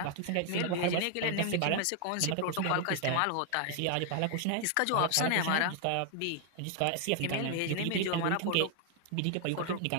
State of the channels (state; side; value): different; both; correlation 0.00